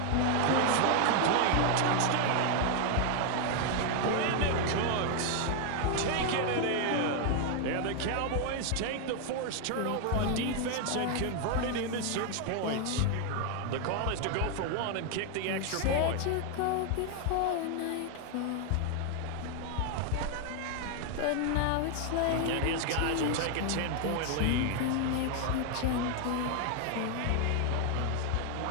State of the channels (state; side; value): different; both; correlation 0.00